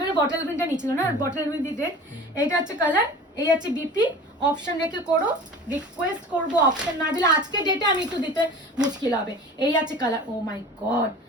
বটল গ্রিনটা নিচ্ছিল না, বটল গ্রিন দিতে। এইটা হচ্ছে কালার, এই আছে বিপি, অপশন রেখে করো। রিকোয়েস্ট করবো অপশন না দিলে আজকে ডেটে আমি একটু দিতে মুশকিল হবে। এই আছে কালার, ও মাই গড,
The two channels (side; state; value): both; normal; correlation 0.39